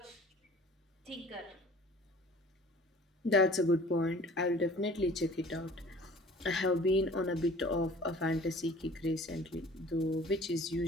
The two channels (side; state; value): both; normal; correlation 0.48